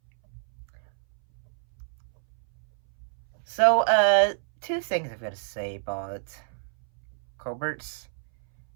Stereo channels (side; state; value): left; silent; 60 dB below the other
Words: So, two things I've got to say about Colbert's